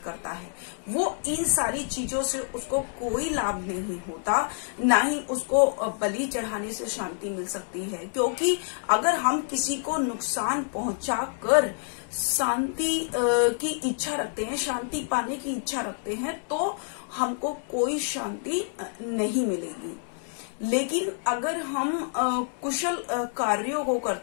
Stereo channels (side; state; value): right; silent; 60 dB below the other